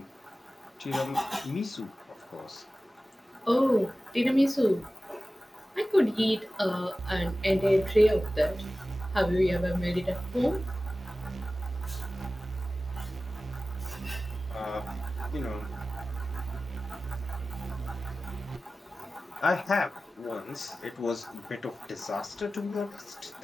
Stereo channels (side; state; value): both; normal; correlation 0.96